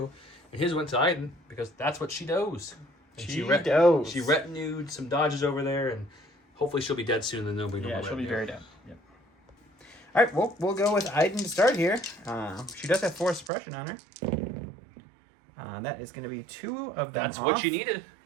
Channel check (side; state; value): left; drops out; at 13.5 s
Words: And his went to Iden because that's what she does. And she retinued some dodges over there, and hopefully she'll be dead soon, and then nobody knows. Yeah, she'll be very dead. Yep. All right, we'll go with Iden to start here. She does have 4 suppression on her. That is going to be 2 of them. That's what you needed.